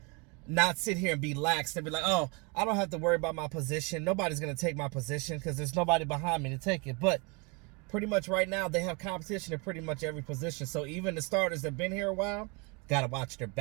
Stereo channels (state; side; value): quieter; left; 30.7 dB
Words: not sit here and be lax and be like, oh, I don't have to worry about my position. Nobody's going to take my position because there's nobody behind me to take it. But pretty much right now they have competition in pretty much every position. So even the starters that have been here a while, got to watch their